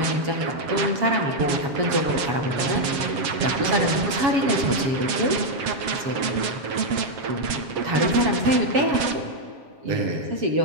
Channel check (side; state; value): left; late; 7.6 ms